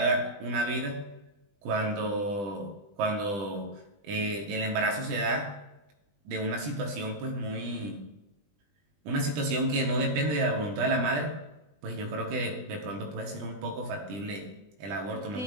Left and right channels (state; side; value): late; left; 20 ms